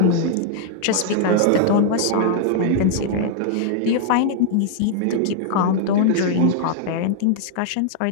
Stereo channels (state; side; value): different; both; correlation -0.01